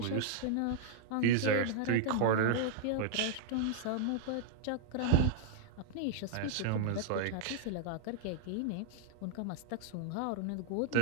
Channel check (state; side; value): different; both; correlation -0.01